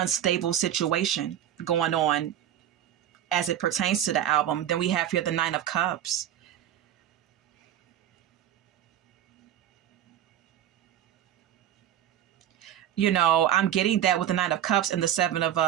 situation going on as it pertains to the album. Then we have here the Nine of Cups. I'm getting that with the Nine of Cups and the Seven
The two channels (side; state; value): left; quieter; 10.9 dB